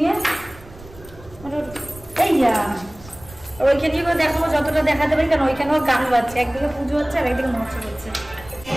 নিয়ে এই ওইখানে করে দেখাবো যতটা দেখাতে পারি কারণ ওইখানেও গান বাজছে একদিকে পুজো হচ্ছে আর একদিকে মহোৎসব হচ্ছে।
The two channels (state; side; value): noise; right; rumble, 20 dB below the sound